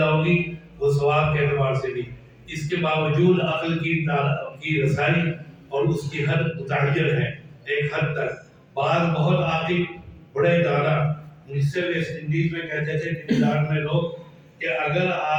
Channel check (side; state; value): both; identical; correlation 1.00